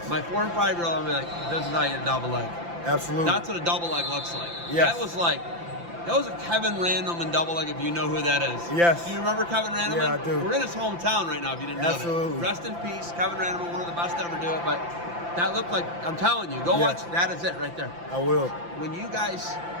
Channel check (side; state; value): left; late; 5.8 ms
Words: My 4 and 5 year old, I'm like, this is how you double leg. Absolutely. That's what a double leg looks like. Yes. That was a Kevin Random in double leg, if you know who that is. Yes. Do you remember Kevin Random? Yeah, I do. We're in his hometown right now, if you didn't know Absolutely. that. Rest in peace, Kevin Random, one of the best to ever do it. But that looked like, I'm telling you, go Yes. watch. That is it right there. I will. When you guys